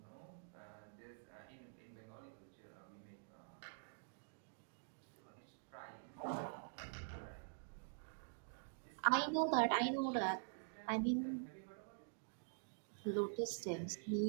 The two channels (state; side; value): silent; left; digital silence